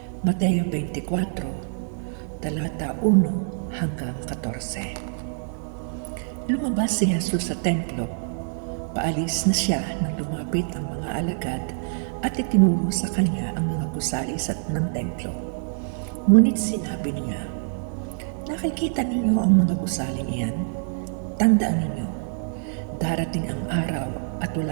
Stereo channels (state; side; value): silent; left; digital silence